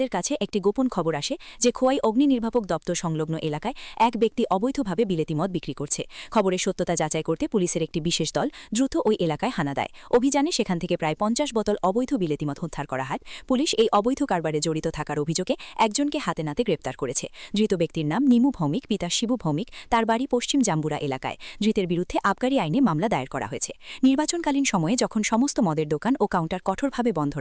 কাছে একটি গোপন খবর আসে যে খোয়াই অগ্নি নির্বাপক দপ্তর সংলগ্ন এলাকায় এক ব্যক্তি অবৈধভাবে বিলেতি মদ বিক্রি করছে। খবরের সত্যতা যাচাই করতে পুলিশের একটি বিশেষ দল দ্রুত ওই এলাকায় হানা দেয়। অভিযানে সেখান থেকে প্রায় 50 বোতল অবৈধ বিলেতি মদ উদ্ধার করা হয়। পুলিশ এই অবৈধ কারবারে জড়িত থাকার অভিযোগে একজনকে হাতে নাতে গ্রেপ্তার করেছে। ধৃত ব্যক্তির নাম নিমু ভৌমিক, পিতা শিবু ভৌমিক, তার বাড়ি পশ্চিম জাম্বুরা এলাকায়। ধৃতের বিরুদ্ধে আবগারি আইনে মামলা দায়ের করা হয়েছে। নির্বাচনকালীন সময়ে যখন সমস্ত মদের দোকান ও কাউন্টার কঠোরভাবে বন্ধ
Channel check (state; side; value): identical; both; correlation 1.00